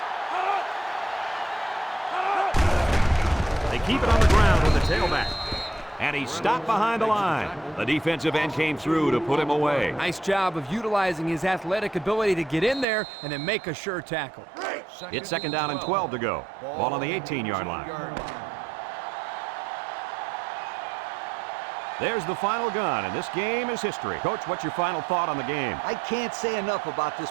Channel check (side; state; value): left; drops out; at 12.9 s